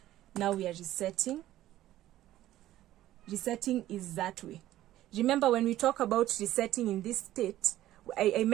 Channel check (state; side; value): quieter; left; 14.1 dB